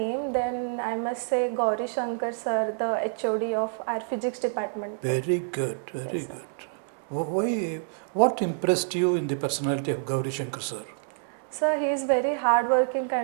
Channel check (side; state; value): left; silent; digital silence